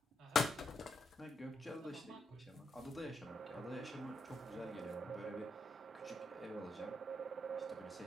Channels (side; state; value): both; normal; correlation 0.80